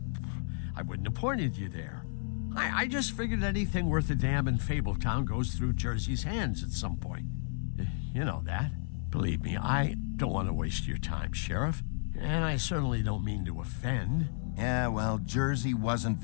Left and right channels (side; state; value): right; silent; digital silence